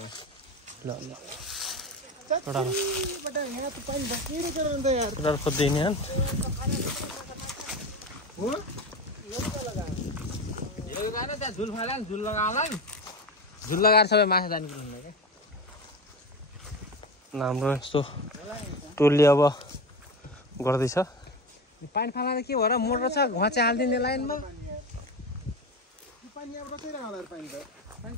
ल ल बटा यहाँ त पानी बकिरै छ नि त यार केटाहरु खोज्दै नि हन हो यो गाना त्यहाँ झुल फाला नि झुल लगाउला नि झुल लगाएर सबै माछा जाने कुरा हुन्छ के हाम्रो यस्तो टोलले अब गर्दैछ पानी फाला के भएर मोटर छ घचे हाल्दिने लाइनमा पानी अब बसिरहेको होला पानी त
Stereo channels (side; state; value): both; normal; correlation 0.24